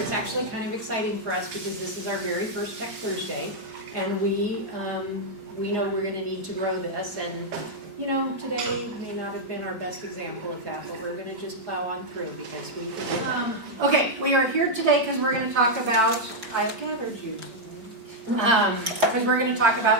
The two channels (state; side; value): late; left; 4.8 ms